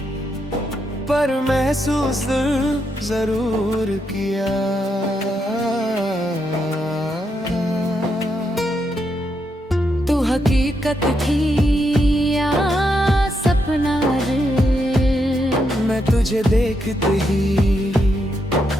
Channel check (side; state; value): both; normal; correlation 0.81